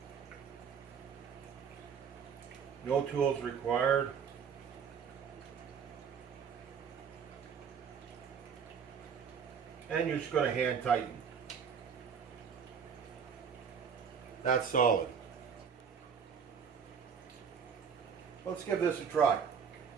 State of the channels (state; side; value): quieter; left; 6.8 dB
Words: No tools required. And you're just going to hand tighten. That's solid. Let's give this a try.